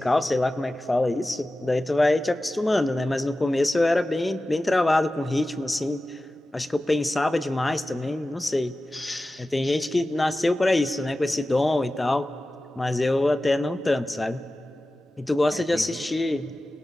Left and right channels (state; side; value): normal; both; correlation 0.95